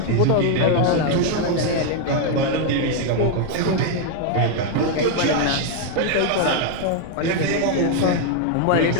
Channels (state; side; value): different; both; correlation 0.00